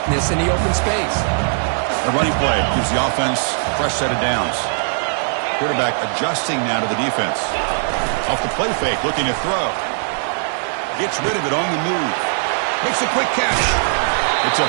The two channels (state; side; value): silent; left; 64 dB below the other